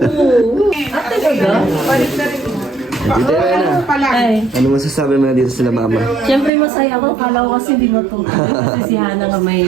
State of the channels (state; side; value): drops out; left; at 6.5 s